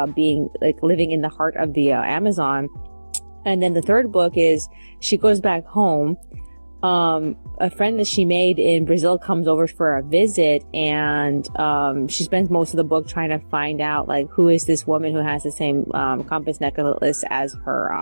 being like living in the heart of the Amazon. And then the third book is she goes back home. A friend that she made in Brazil comes over for a visit, and she spends most of the book trying to find out like who is this woman who has the same compass necklace as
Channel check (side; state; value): both; inverted; correlation -1.00